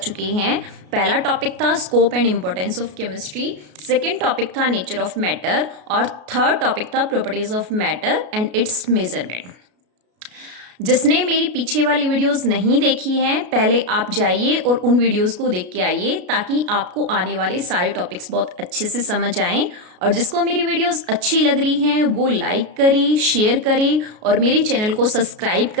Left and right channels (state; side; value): late; left; 33 ms